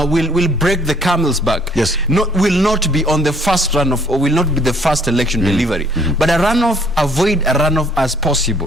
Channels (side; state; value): both; normal; correlation 0.61